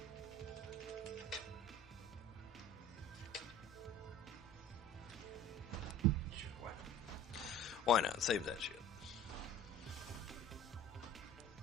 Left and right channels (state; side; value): normal; both; correlation 0.45